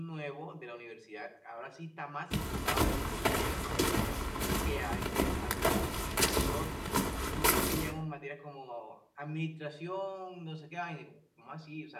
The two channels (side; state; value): both; identical; correlation 1.00